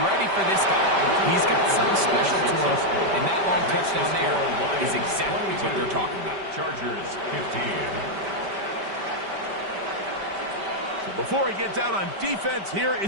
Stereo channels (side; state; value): left; late; 5.1 ms